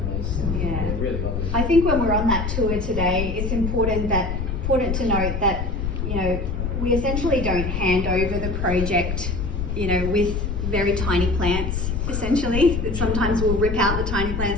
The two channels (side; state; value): left; noise; rumble, 2 dB below the sound